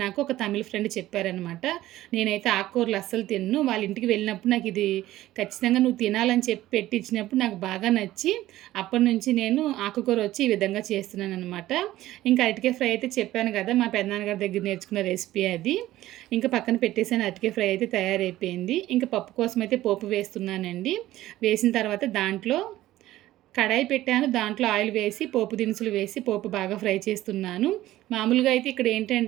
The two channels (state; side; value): quieter; left; 15.2 dB